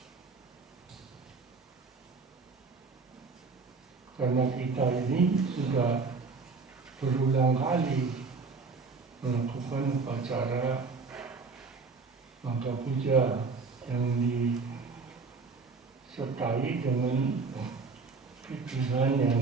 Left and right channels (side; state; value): left; quieter; 4.5 dB